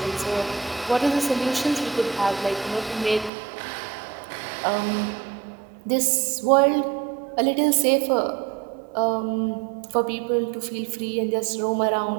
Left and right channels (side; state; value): left; drops out; at 3.3 s